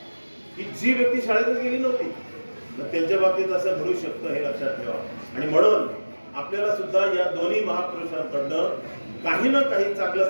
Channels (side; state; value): both; inverted; correlation -1.00